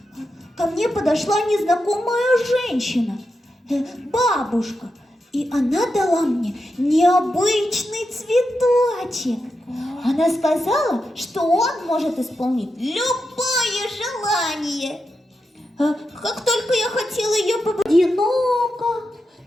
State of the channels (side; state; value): both; normal; correlation 0.88